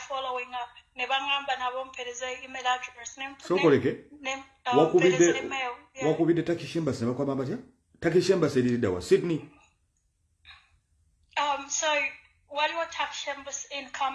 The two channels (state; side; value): identical; both; correlation 1.00